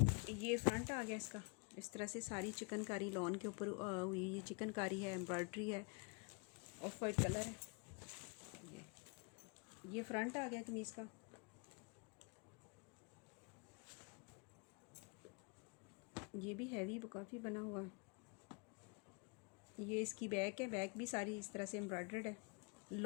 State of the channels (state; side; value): quieter; right; 34.0 dB